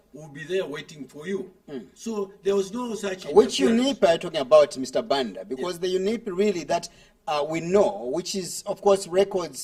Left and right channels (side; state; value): both; identical; correlation 1.00